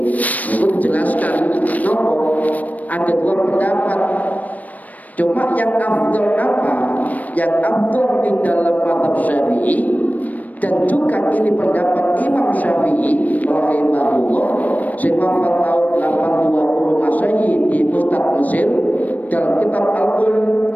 dijelaskan nopo ada dua pendapat. Cuma yang afdal apa? Yang afdal di dalam mazhab Syafi'i, dan juga ini pendapat Imam Syafi'i rahimahullah sing wafat tahun 820 Masehi di Pusat Mesir. Dalam kitab Al-Qum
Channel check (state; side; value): late; right; 0.075 ms